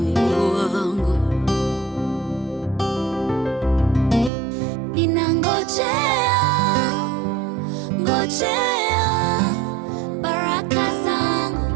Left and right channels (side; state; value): left; drops out; at 4.3 s